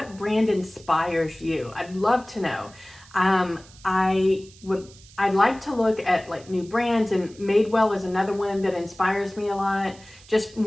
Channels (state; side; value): noise; right; hiss, 23 dB below the sound